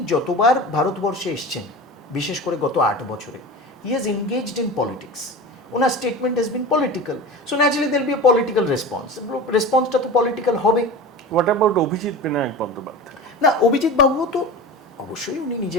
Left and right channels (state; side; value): normal; both; correlation 0.31